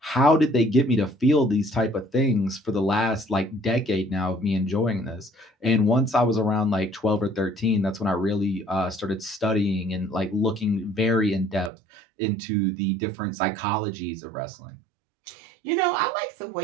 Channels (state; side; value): drops out; left; at 11.7 s